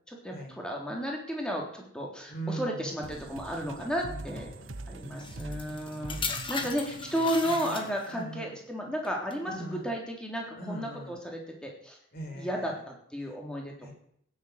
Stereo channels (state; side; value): normal; both; correlation 0.57